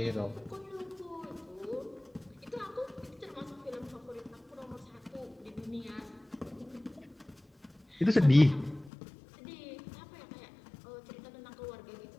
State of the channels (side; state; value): right; drops out; at 8.9 s